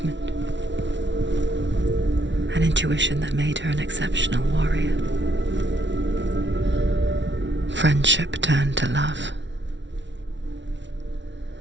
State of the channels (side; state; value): left; late; 0.53 ms